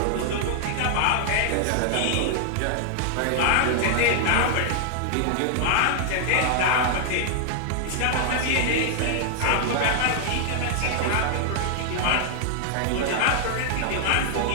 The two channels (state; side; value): different; both; correlation -0.01